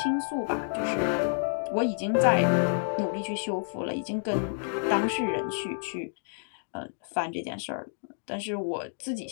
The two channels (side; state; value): right; silent; digital silence